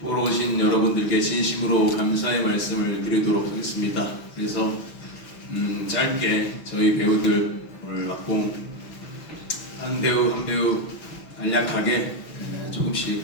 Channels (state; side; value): late; right; 6.1 ms